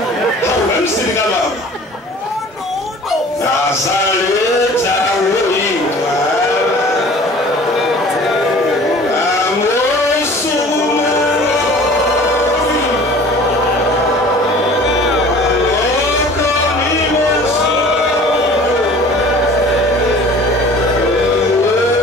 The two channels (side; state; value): both; normal; correlation 0.46